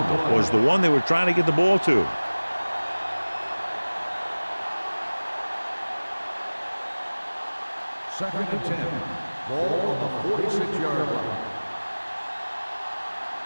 was the one they were trying to get the ball to. Second and 10. Ball on the 46-yard line.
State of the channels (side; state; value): both; inverted; correlation -1.00